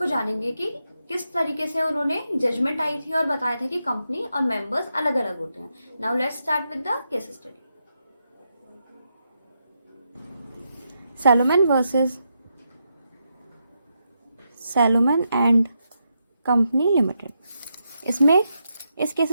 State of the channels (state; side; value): inverted; both; correlation -0.84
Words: जानेंगे कि किस तरीके से उन्होंने जजमेंट आई थी और बताया था कि कंपनी और मेंबर्स अलग अलग होते हैं। Now let's start with the case study. Salomon versus Salomon and company limited. इसमें इस केस